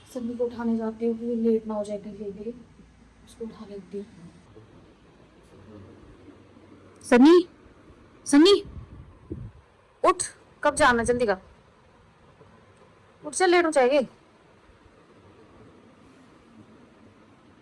सभी को उठाने जाती हूँ कि लेट ना हो जाए कहीं भी, उसको उठा लेती हूँ। सनी, सनी उठ, कब जाना? जल्दी कर, उठ चल, लेट हो जाएगी।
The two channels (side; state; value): both; identical; correlation 1.00